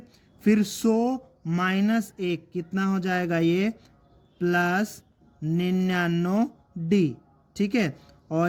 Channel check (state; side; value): identical; both; correlation 1.00